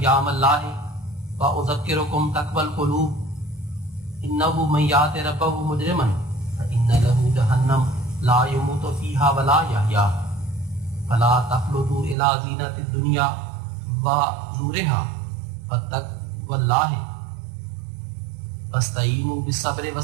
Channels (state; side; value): drops out; left; at 12.2 s